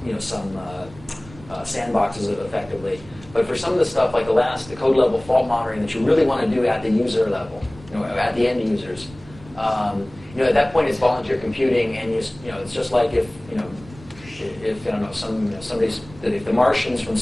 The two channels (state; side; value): noise; right; rumble, 20 dB below the sound